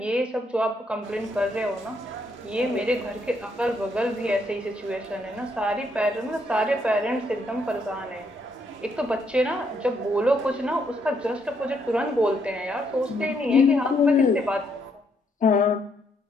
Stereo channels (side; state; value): both; normal; correlation 0.74